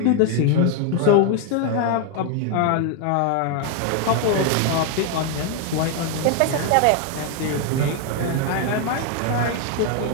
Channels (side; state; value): both; different; correlation 0.01